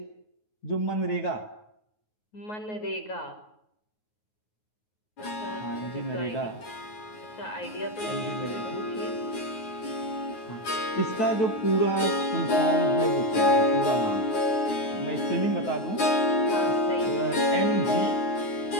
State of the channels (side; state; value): right; late; 9.6 ms